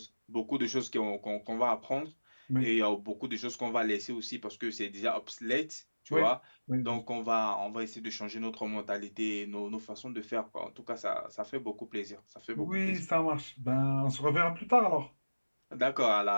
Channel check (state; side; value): inverted; both; correlation -1.00